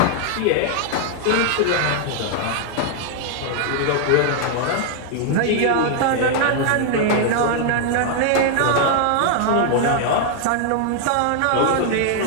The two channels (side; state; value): both; different; correlation 0.00